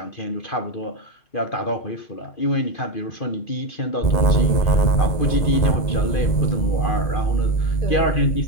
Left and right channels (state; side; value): late; right; 2.5 ms